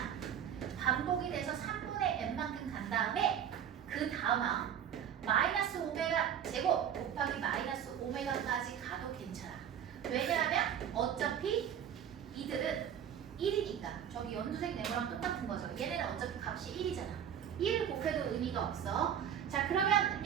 반복이 돼서 3분의 n만큼 간 다음에 그 다음 마이너스 오메가 제곱 곱하기 마이너스 오메가까지 가도 괜찮아. 왜냐하면 어차피 이들은 1이니까. 저기 연두색 네모랑 똑같은 거죠. 얘네는 어차피 값이 1이잖아. 1을 곱해도 의미가 없어. 자, 그러면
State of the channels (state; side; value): quieter; left; 9.1 dB